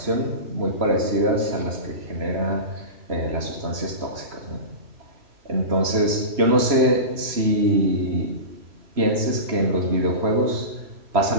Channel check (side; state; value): left; late; 3.0 ms